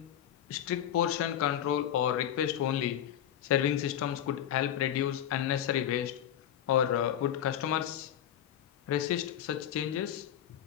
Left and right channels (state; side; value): quieter; right; 10.5 dB